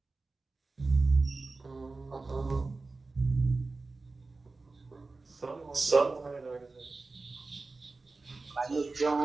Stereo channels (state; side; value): quieter; left; 3.6 dB